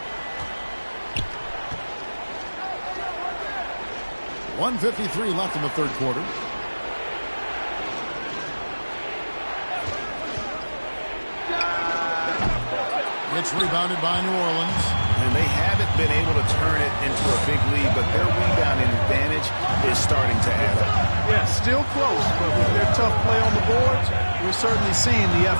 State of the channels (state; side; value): inverted; both; correlation -1.00